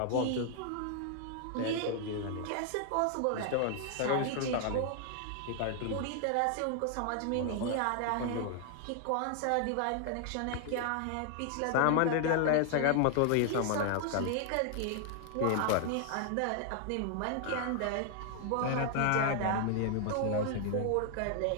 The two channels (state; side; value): different; both; correlation 0.00